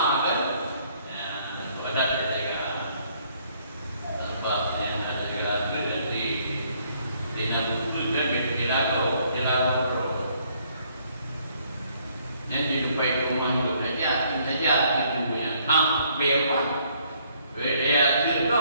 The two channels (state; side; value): inverted; both; correlation -0.66